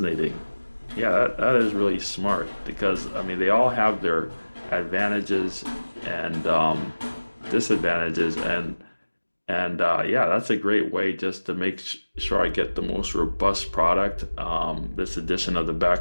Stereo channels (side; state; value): both; inverted; correlation -1.00